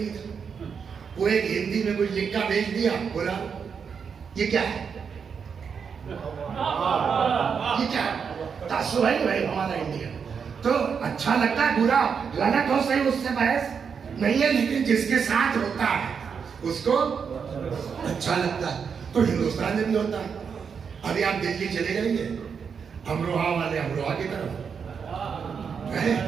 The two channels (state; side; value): quieter; left; 6.4 dB